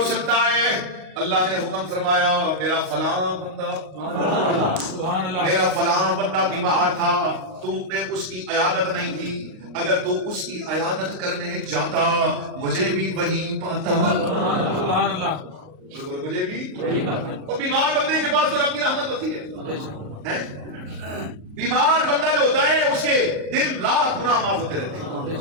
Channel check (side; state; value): left; late; 38 ms